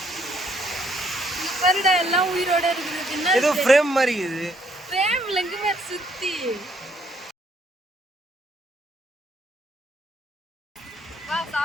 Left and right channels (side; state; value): both; normal; correlation 0.68